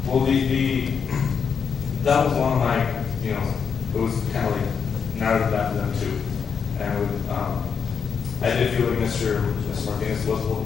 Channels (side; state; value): right; quieter; 6.5 dB